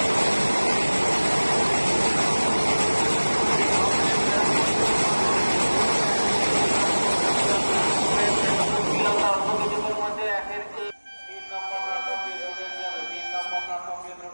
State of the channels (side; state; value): both; inverted; correlation -1.00